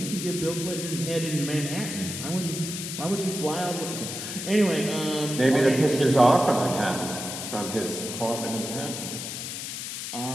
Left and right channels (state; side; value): noise; left; hiss, 6 dB below the sound